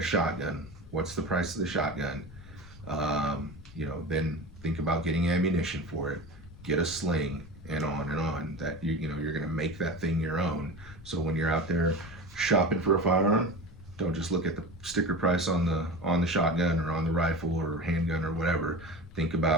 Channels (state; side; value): noise; left; rumble, 18 dB below the sound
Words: shotgun. What's the price of the shotgun? Then think about getting ammunition for it, get a sling, and on. That you're going to make that thing your own. So when you're out there shopping for a firearm, don't just look at the sticker price on the shotgun or on the rifle or handgun or whatever. Think